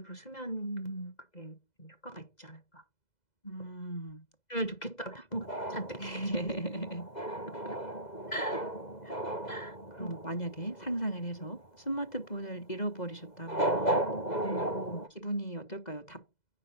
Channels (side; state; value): right; late; 2.0 ms